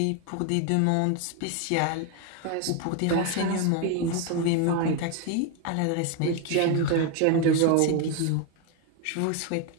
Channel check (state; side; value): different; both; correlation 0.01